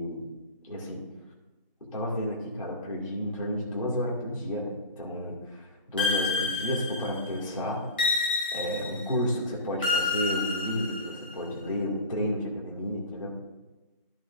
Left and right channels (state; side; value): inverted; both; correlation -0.31